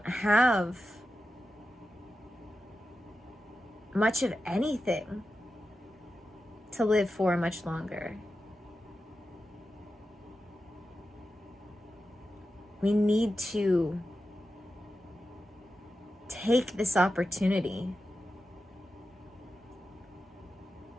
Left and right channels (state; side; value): normal; both; correlation 0.91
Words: have much of anything to live for much longer. We need to take this opportunity